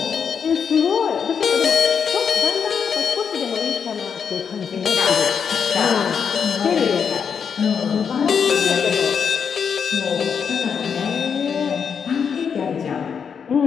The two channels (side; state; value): right; quieter; 6.8 dB